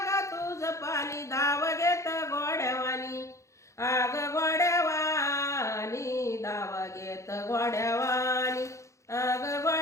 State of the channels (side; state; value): right; late; 0.15 ms